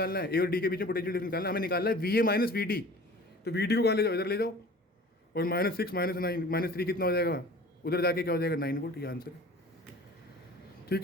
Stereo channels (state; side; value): normal; both; correlation 0.44